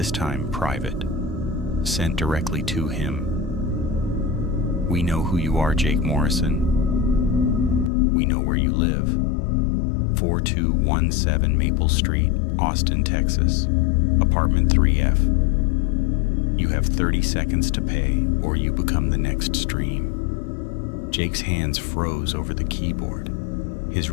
time private, sent directly to him. We know who you are, Jake Morrison. We know where you live. 4217 Maple Street, Austin, Texas, apartment 3F. You have 30 seconds to pay, or you become the next stream. Jake's hands froze over the keyboard. His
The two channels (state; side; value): drops out; right; at 7.9 s